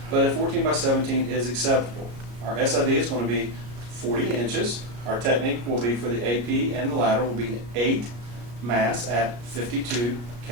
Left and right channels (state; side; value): late; left; 34 ms